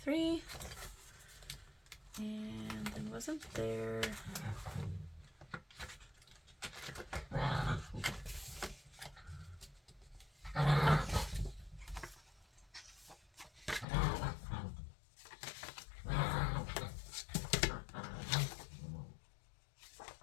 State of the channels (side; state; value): right; drops out; at 13.9 s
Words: And then wasn't there...